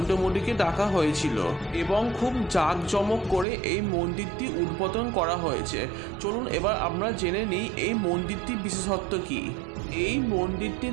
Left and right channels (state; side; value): drops out; left; at 3.5 s